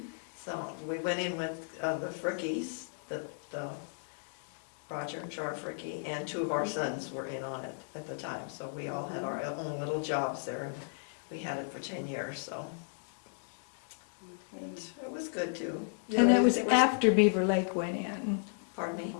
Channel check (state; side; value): silent; right; digital silence